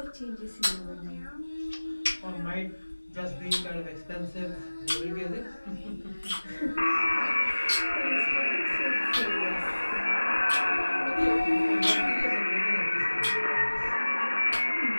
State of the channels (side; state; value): both; inverted; correlation -1.00